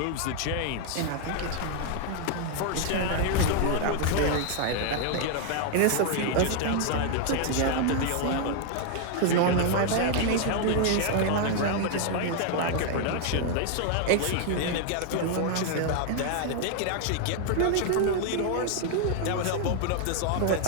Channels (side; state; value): both; different; correlation 0.00